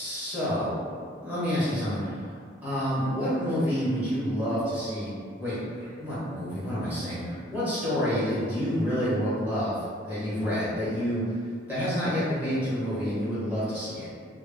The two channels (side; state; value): both; normal; correlation 0.58